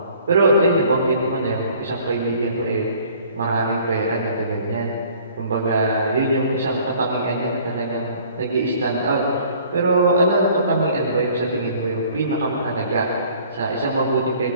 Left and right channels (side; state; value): both; inverted; correlation -0.54